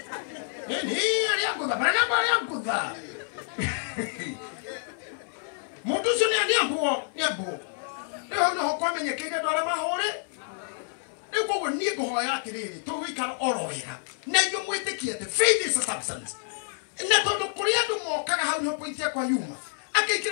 ni ari yangu bara namba ari yangu muturisho ni ambo leo no kwamenye kile dora mahure ni kwa ni gohoya atiriri to wikara orohera na yo mwitikie te faith is a substance na tondu kuri andu mokaga hau no point ya kwa yuma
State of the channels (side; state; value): right; silent; digital silence